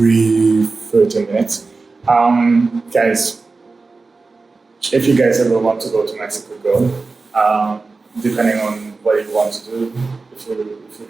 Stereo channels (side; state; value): left; quieter; 3.9 dB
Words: minutes. Guys, if you guys ever want to go to Mexico, go. Depending on what you want to do, if you